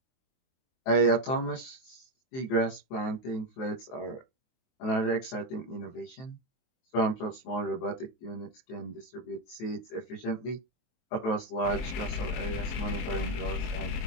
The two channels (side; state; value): right; late; 23 ms